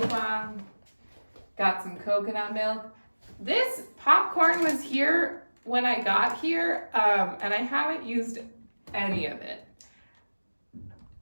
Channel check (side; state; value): both; inverted; correlation -1.00